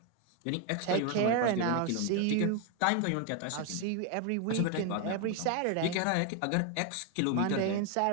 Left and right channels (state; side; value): different; both; correlation 0.01